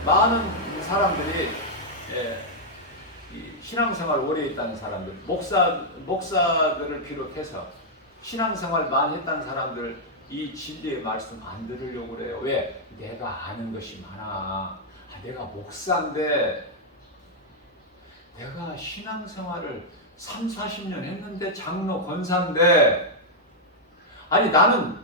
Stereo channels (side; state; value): both; normal; correlation -0.05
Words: 많은 사람들이 이 신앙생활 오래 했다는 사람들, 목사들을 비롯해서 신앙생활 많이 했다는 사람들, 이 진리의 말씀 안 들으려고 그래요. 왜? 내가 아는 것이 많아. 내가 목사인데, 내가 신앙생활을 3, 40년 했는데, 장로 권사인데, 아니 나는